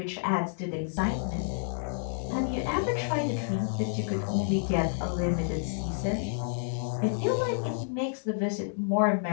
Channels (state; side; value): silent; right; digital silence